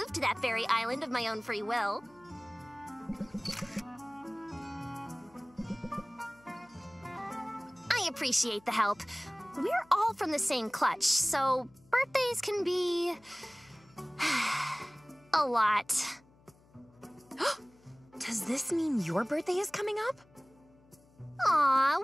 to that very island of my own free will. I appreciate the help. We're all from the same clutch, so birthdays can be... a lot. Does this mean your birthday is coming up? Aw,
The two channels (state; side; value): noise; left; hum, 29 dB below the sound